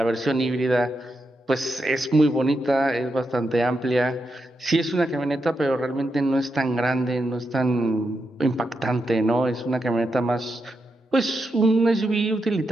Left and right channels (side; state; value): both; normal; correlation 0.85